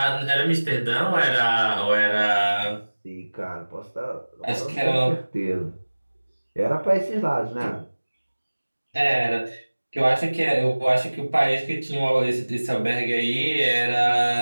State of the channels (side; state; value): both; inverted; correlation -1.00